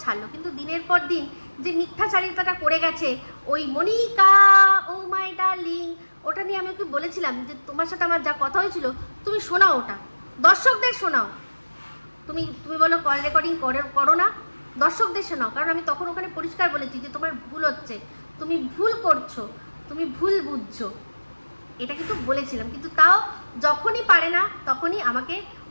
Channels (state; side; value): inverted; both; correlation -1.00